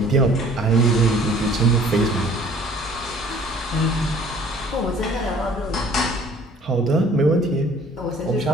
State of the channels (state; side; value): normal; both; correlation 0.54